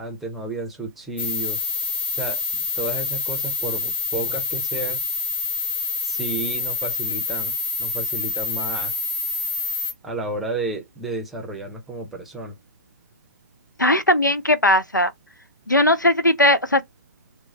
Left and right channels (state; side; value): normal; both; correlation 0.02